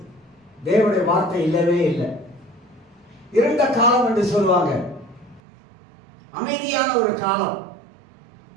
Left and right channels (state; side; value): drops out; left; at 5.4 s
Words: தேவனுடைய வார்த்தை இல்லவே இல்லை. இருண்ட காலம் என்று சொல்லுவாங்க. அமைதியான ஒரு காலம்.